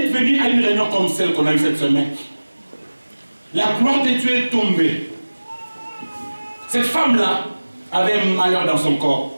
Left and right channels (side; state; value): both; inverted; correlation -1.00